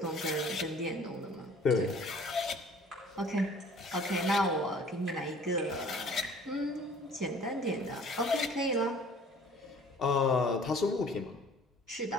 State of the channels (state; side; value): normal; both; correlation 0.51